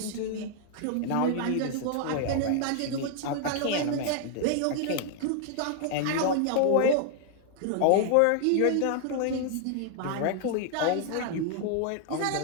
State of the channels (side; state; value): both; different; correlation 0.00